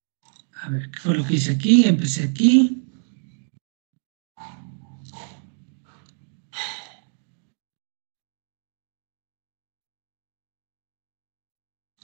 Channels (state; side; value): silent; left; digital silence